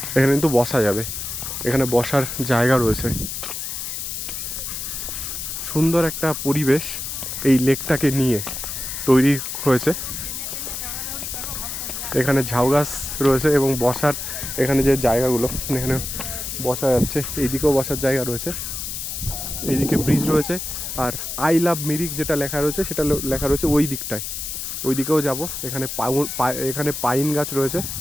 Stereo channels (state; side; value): noise; left; hiss, 5 dB below the sound